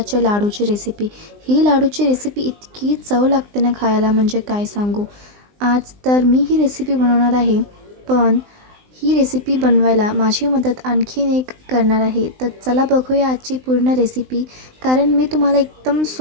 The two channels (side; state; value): left; late; 19 ms